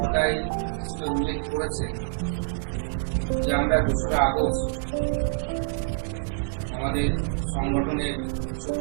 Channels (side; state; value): left; silent; digital silence